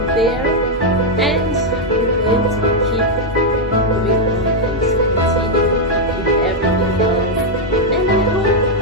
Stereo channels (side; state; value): both; normal; correlation -0.01